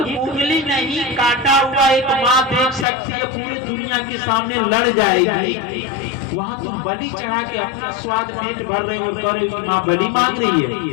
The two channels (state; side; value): drops out; right; at 2.9 s